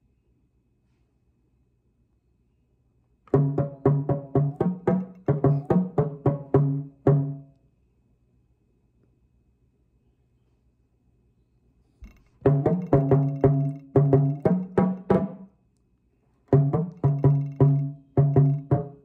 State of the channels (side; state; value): both; identical; correlation 1.00